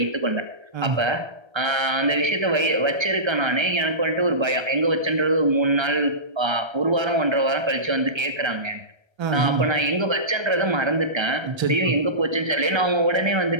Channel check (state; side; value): late; left; 1.3 ms